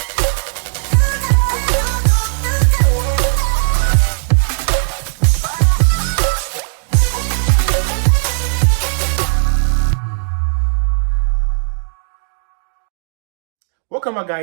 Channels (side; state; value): left; silent; digital silence